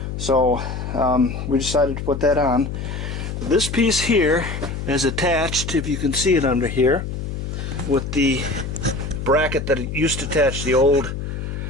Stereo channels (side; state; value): left; noise; hum, 5 dB below the sound